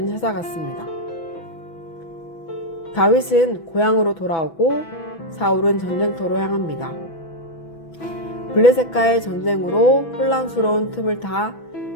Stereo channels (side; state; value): right; late; 6.1 ms